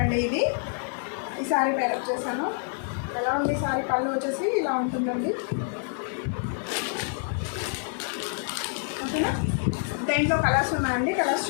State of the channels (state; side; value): silent; right; 58 dB below the other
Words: అండి. ఈ శారీ పేరప్ చేశాను. ఎలా ఉంది శారీ? పళ్ళు వచ్చేసి ఇలా ఉంటుందండి. ఓకేనా? దేంట్లో కలర్స్ ఉన్నాయండి, కలర్స్